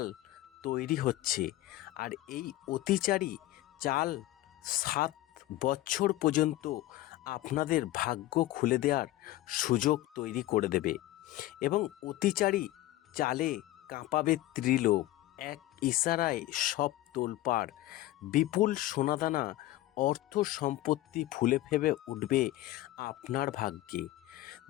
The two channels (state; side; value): quieter; right; 16.0 dB